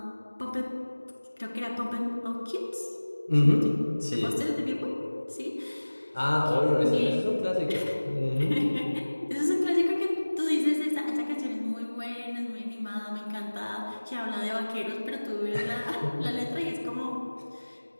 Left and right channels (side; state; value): both; inverted; correlation -1.00